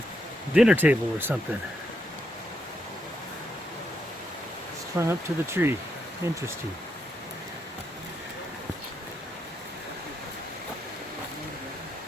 a dinner table or something. Strung up to the tree. Interesting.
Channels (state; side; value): normal; both; correlation 0.80